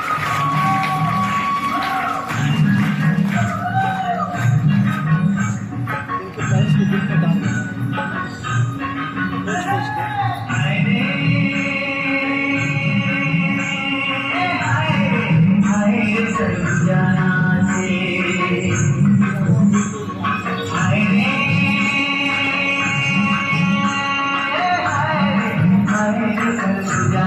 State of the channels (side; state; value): both; identical; correlation 1.00